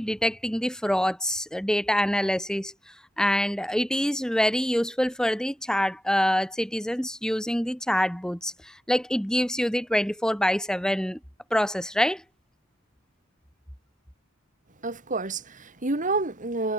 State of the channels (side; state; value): both; normal; correlation 0.86